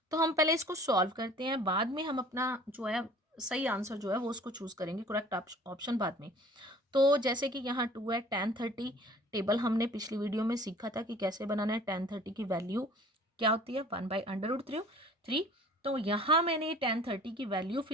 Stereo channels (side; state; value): both; normal; correlation 0.49